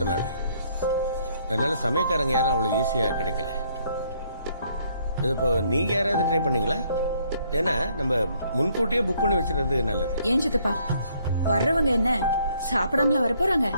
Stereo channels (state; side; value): inverted; both; correlation -0.67